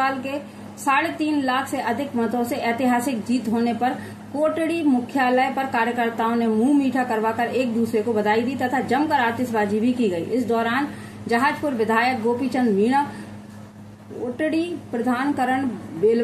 के 3.5 लाख से अधिक मतों से ऐतिहासिक जीत होने पर कोटड़ी मुख्यालय पर कार्यकर्ताओं ने मुंह मीठा करवाकर एक दूसरे को बधाई दी तथा जमकर आतिशबाजी भी की गई। इस दौरान जहाजपुर विधायक गोपीचंद मीणा, कोटड़ी प्रधान करण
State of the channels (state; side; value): identical; both; correlation 1.00